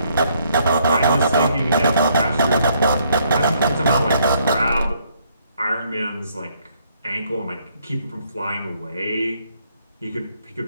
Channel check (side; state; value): both; inverted; correlation -0.69